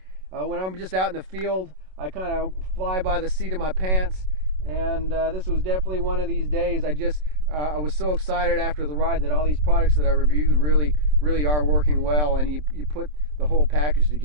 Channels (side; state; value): left; late; 27 ms